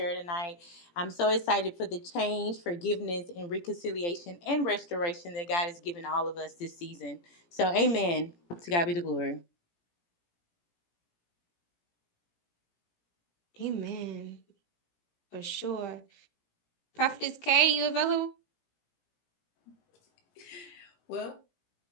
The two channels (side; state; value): right; late; 17 ms